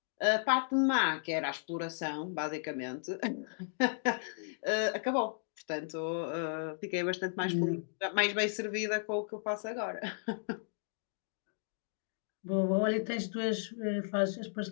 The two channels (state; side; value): silent; right; digital silence